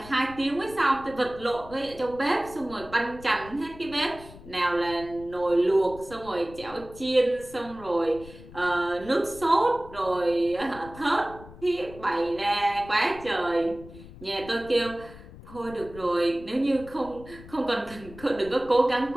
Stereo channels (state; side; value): noise; left; rumble, 17 dB below the sound